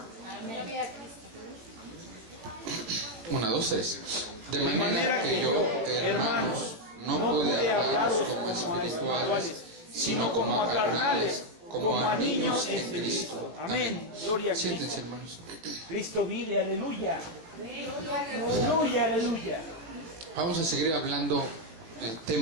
1, 2, 3. De manera que yo, hermanos, no pude hablaros como espirituales, sino como a carnales, como a niños en Cristo. Amén. Gloria a Cristo. Siéntense, hermanos. Cristo vive, aleluya. Aleluya, aleluya. Vamos a seguir hablando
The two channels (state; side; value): late; left; 18 ms